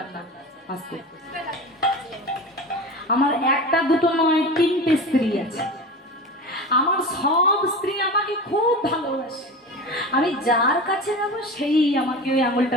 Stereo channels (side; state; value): both; normal; correlation 0.30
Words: না। আস্তে, আমার একটা দুটো নয় 3টে স্ত্রী আছে, আমার সব স্ত্রী আমাকে খুব ভালোবাসে, আমি যার কাছে যাবো সেই আমাকে ওই